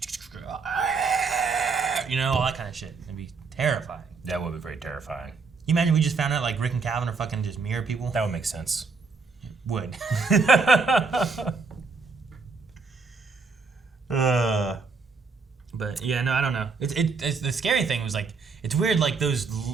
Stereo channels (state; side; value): quieter; left; 4.6 dB